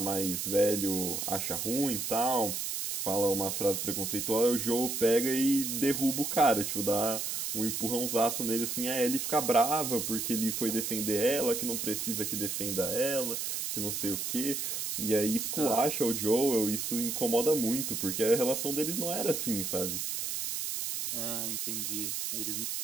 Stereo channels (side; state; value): right; noise; hiss, 2 dB below the sound